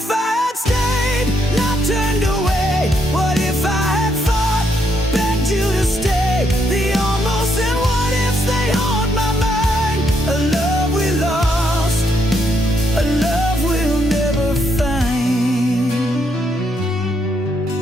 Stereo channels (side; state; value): both; normal; correlation 0.75